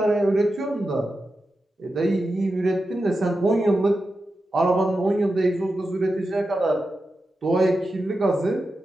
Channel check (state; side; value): normal; both; correlation 0.90